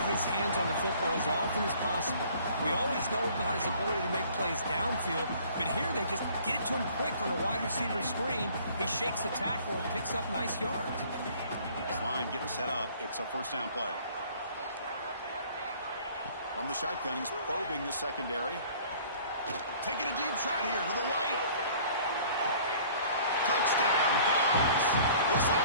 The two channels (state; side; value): inverted; both; correlation -0.53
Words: his hands on the football as often as possible. We always know about his ability to make plays downfield, but here they just get it to him quick on a wide receiver screen. He shakes the tackle and picks up nice yards. This line getting set up. It's a 1st down play. From the shotgun, he's probing the secondary. Taking a deep shot here to the right. Touchdown, Dogs. This